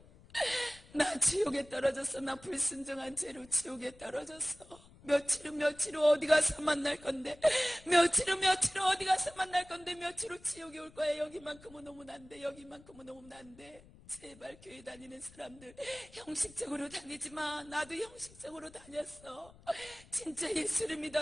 나 지옥에 떨어졌어. 나 불순종한 죄로 지옥에 떨어졌어. 며칠 후 어디 가서 만날 건데, 며칠 후 어디 가서 만날 건데, 며칠 후 지옥에 올 거야. 여기만큼은 오면 안 돼. 여기만큼은 오면 안 돼. 제발 교회 다니는 사람들 형식적으로 다니지 마. 나도 형식적으로 다녔어. 진짜 예수를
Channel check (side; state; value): left; noise; rumble, 23 dB below the sound